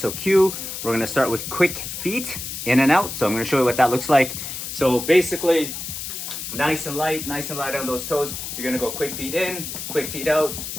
Q, we're gonna start with quick feet, in and out. So I'm gonna show you what that looks like. So basically, nice and light on those toes. You're gonna go quick feet in, quick feet out,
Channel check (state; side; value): noise; left; hiss, 7 dB below the sound